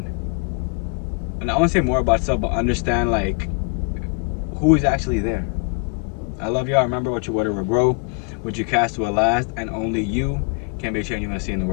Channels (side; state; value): right; quieter; 34.1 dB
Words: and I want to say more about yourself, but understand like who is actually there. I love y'all. Remember, what you water will grow, what you cast will last, and only you can make change you want to see in the